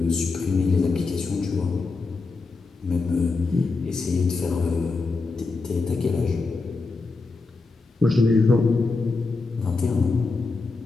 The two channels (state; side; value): quieter; right; 3.9 dB